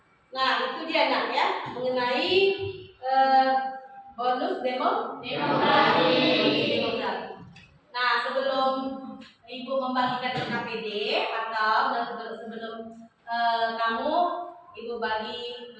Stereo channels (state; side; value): identical; both; correlation 1.00